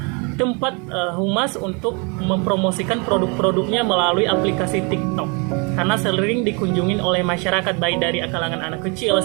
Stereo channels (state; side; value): quieter; left; 32.3 dB